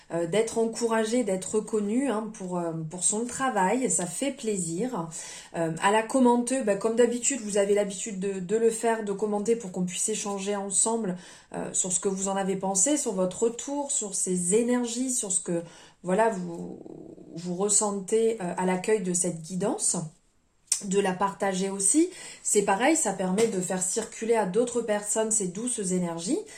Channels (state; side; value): identical; both; correlation 1.00